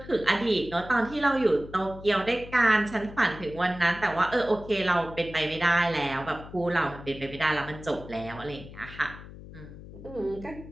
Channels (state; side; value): noise; left; hum, 15 dB below the sound